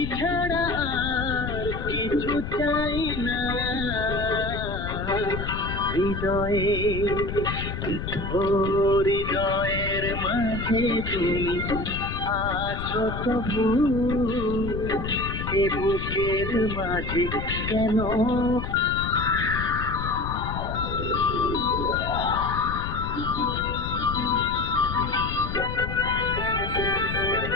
ছাড়া আর কিছু চাই না। হৃদয়ে, ও হৃদয়ের মাঝে তুমি আছো তবু, এ বুকের মাঝে কেন।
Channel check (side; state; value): left; noise; rumble, 5 dB below the sound